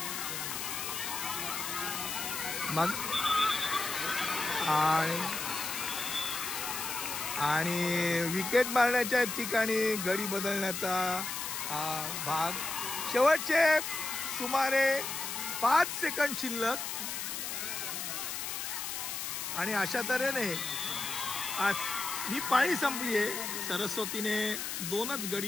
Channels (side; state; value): left; noise; hiss, 4 dB below the sound